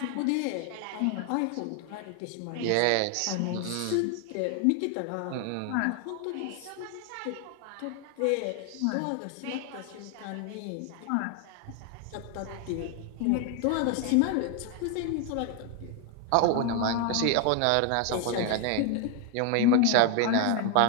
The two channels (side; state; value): both; different; correlation 0.00